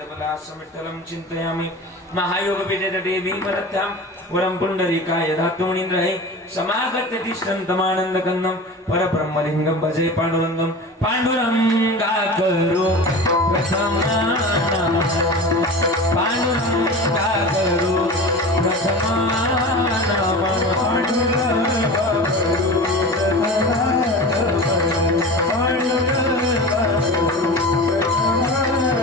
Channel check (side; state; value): both; normal; correlation 0.32